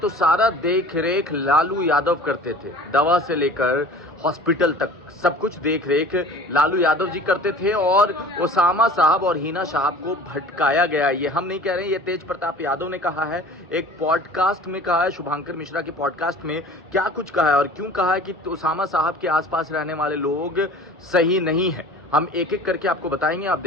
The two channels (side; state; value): both; normal; correlation 0.43